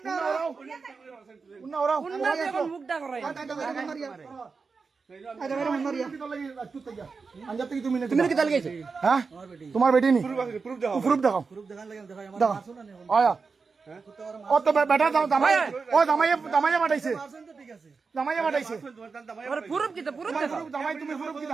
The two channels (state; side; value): quieter; left; 4.8 dB